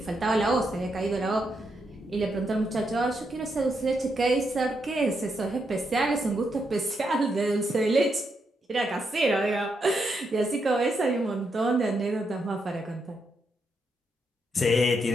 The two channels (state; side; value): normal; both; correlation 0.81